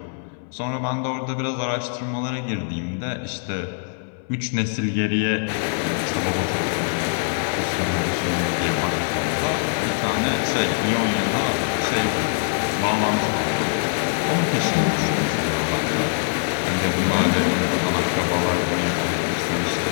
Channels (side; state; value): right; silent; 60 dB below the other